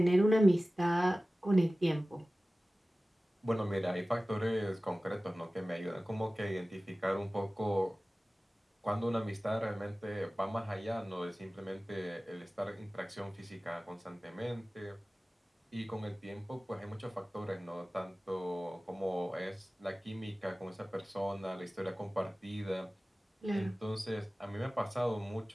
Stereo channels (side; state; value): both; normal; correlation 0.97